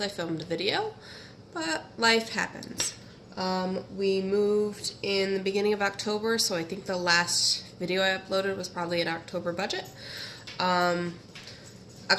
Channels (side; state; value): both; identical; correlation 1.00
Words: I filmed a video, but life happens. We moved in the beginning of October, so I think the last video I uploaded was probably an October budget.